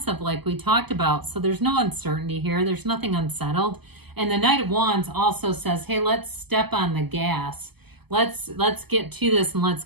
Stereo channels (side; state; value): left; late; 0.98 ms